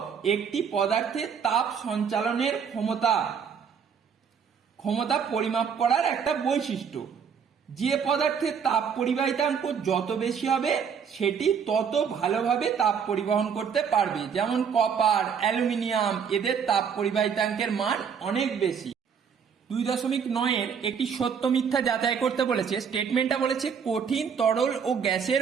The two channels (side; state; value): left; quieter; 6.9 dB